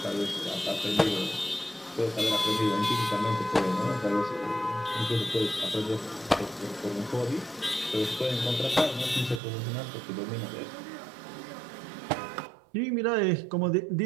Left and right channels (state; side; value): drops out; left; at 9.4 s